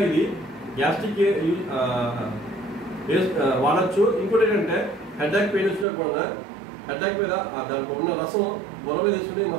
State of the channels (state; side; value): drops out; left; at 5.9 s